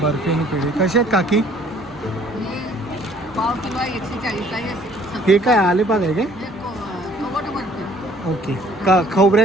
बर्फी आणि पेढे. कसे आहेत काकी? हे काय आलेपाक आहे काय? ओके, का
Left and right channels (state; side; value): normal; both; correlation 0.57